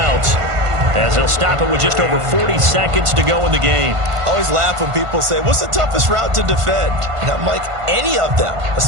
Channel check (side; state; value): left; late; 1.5 ms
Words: as they'll stop it with just over 40 seconds to go in the game. I always laugh when people say, what's the toughest route to defend? And I'm like, any of them,